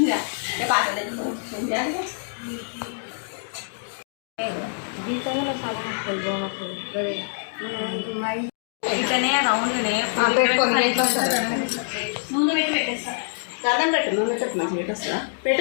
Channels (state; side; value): silent; right; digital silence